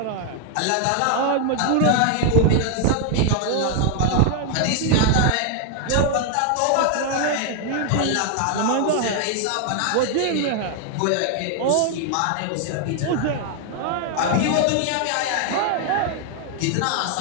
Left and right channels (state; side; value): different; both; correlation 0.00